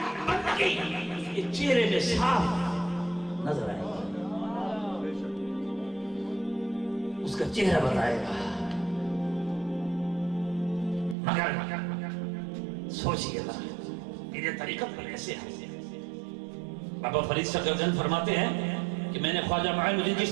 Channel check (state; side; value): drops out; left; at 11.2 s